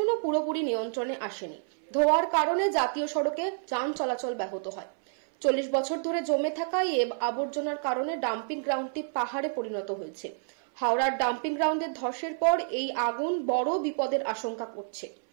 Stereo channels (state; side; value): silent; left; 59 dB below the other